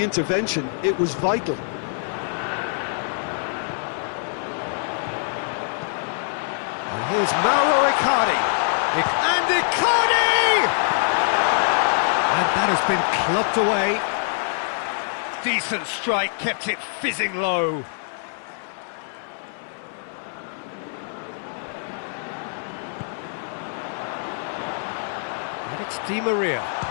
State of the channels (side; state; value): right; silent; 62 dB below the other